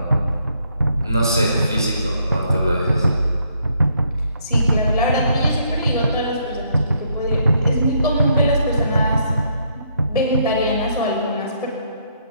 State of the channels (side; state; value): both; inverted; correlation -0.71